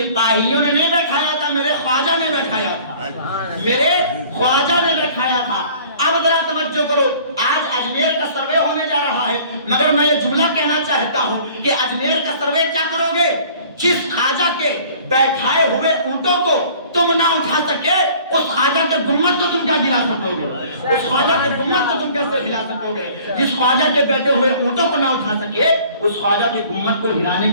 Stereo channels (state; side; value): inverted; both; correlation -0.51